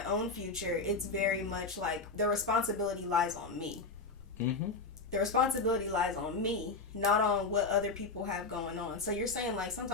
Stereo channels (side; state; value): right; quieter; 4.0 dB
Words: own future, it's very much like the responsibility lies on me. Mm-hmm. The responsibility lies on me, not on what other people have going on. So you're saying like